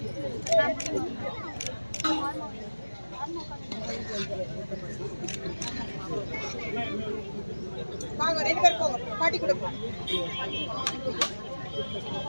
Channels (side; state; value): both; inverted; correlation -1.00